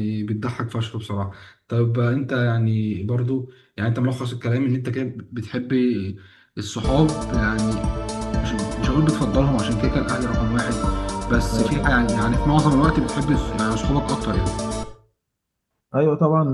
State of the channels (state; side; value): identical; both; correlation 1.00